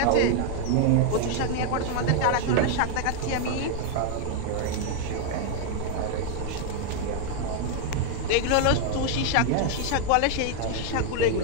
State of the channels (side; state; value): both; different; correlation 0.00